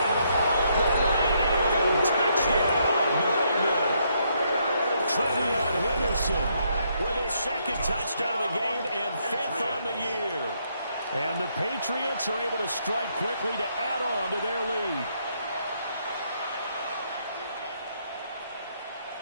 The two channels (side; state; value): both; inverted; correlation -0.74